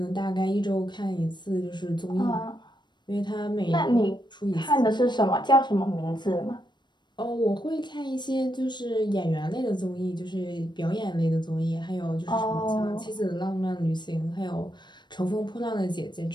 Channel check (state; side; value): late; right; 0.22 ms